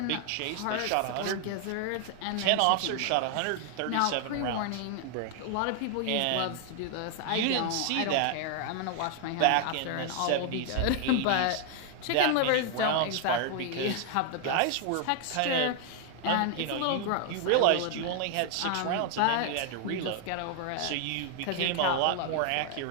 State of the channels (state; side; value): different; both; correlation 0.00